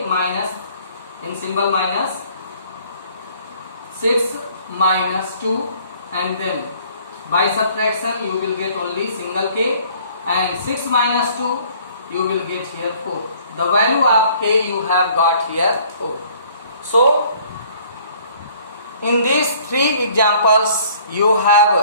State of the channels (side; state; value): both; inverted; correlation -0.57